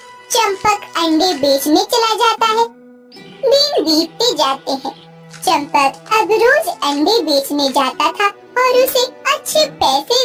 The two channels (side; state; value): both; identical; correlation 1.00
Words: चंपक अंडे बेचने चला जाता है। दिन बीतते जाते हैं। चंपक अब रोज अंडे बेचने जाता था और उसे अच्छे पैसे